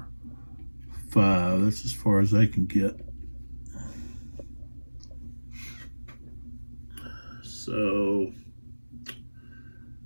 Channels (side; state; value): both; inverted; correlation -1.00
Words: 5. That's as far as I can get. So,